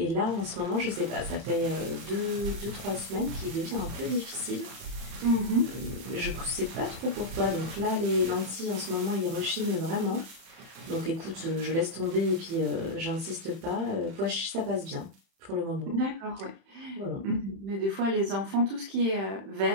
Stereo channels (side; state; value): left; late; 31 ms